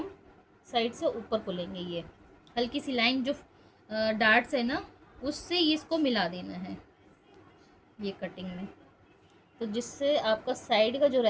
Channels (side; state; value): both; identical; correlation 1.00